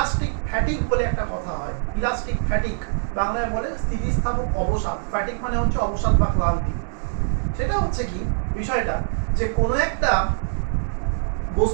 ফ্যাটিক বলে একটা কথা হয়। ইলাস্টিক ফ্যাটিক বাংলায় বলে স্থিতিস্থাপক অবসাদ। ফ্যাটিক মানে হচ্ছে অবসাদ বা ক্লান্তি। সেটা হচ্ছে কি বিষয়টা, যে কোনো একটা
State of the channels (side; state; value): left; silent; digital silence